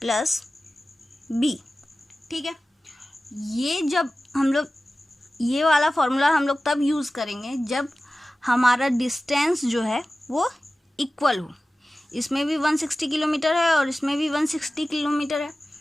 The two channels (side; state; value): both; normal; correlation 0.96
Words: ठीक है। ये जब हम लोग ये वाला फॉर्मूला हम लोग तब यूज़ करेंगे जब हमारा डिस्टेंस जो है वो इक्वल हो। इसमें भी 160 किलोमीटर है और इसमें भी 160 किलोमीटर है।